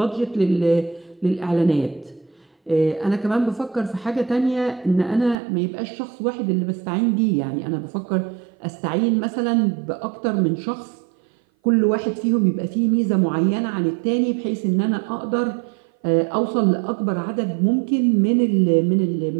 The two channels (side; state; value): left; drops out; at 5.4 s